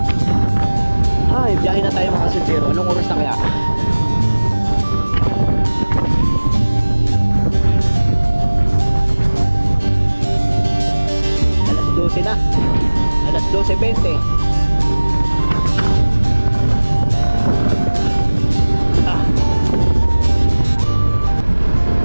Ay, biyahe na tayo mga kasintero. Anong oras na kaya? Alas 12 na. Alas 12:20.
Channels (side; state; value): both; inverted; correlation -1.00